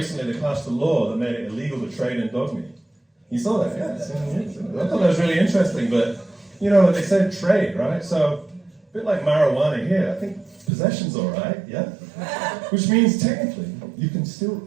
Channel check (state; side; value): drops out; left; at 10.7 s